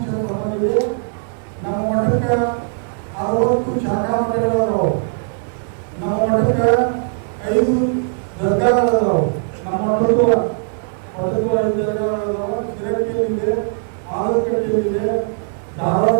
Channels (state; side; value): silent; left; digital silence